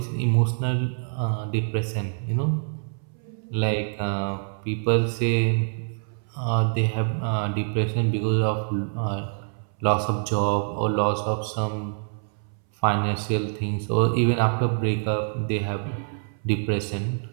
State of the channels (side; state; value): left; silent; 61 dB below the other